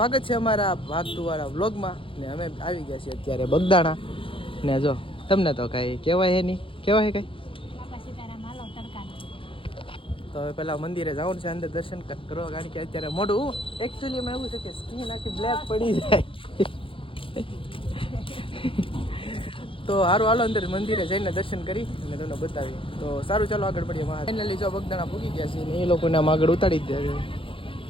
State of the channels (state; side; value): late; right; 0.25 ms